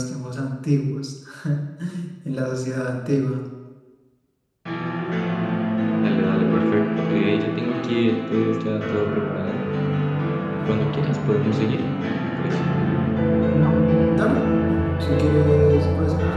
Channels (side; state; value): both; identical; correlation 1.00